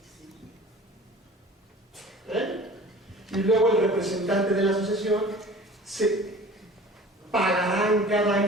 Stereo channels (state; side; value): normal; both; correlation 0.43